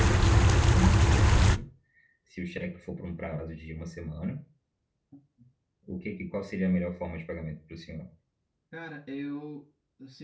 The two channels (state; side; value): identical; both; correlation 1.00